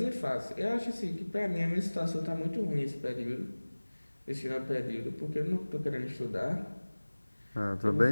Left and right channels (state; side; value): inverted; both; correlation -1.00